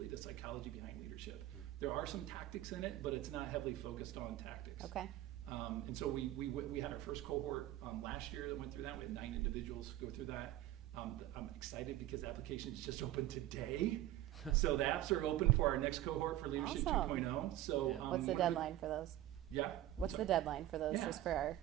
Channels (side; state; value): left; quieter; 14.2 dB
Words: the psychology behind leadership. There are some tactics in it, but it's not heavily focused on tactics. Okay. And so we had our first cohort last year that went through that. We had 9 individuals go through that. I'm excited because the applications just opened today. So the apps are open for our next cohort for Leadership Awesome. 2.0. So Yeah. What's the deadline for those? Yeah. What's the deadline for those, Yeah. just for our